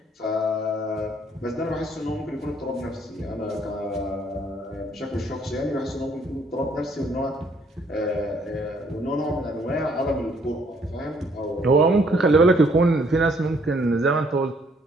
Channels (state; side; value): normal; both; correlation 0.65